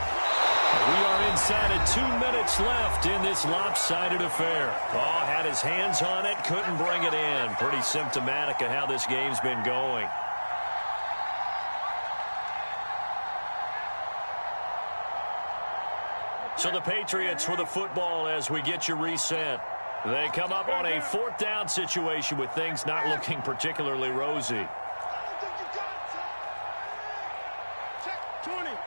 We are inside of 2 minutes left in this lopsided affair. Oh, had his hands on it, couldn't bring it in. Pretty symptomatic of how this game's been going. So the Patriots with the football as we get you reset. They come up on a 4th down situation with things not looking particularly rosy.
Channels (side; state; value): both; inverted; correlation -1.00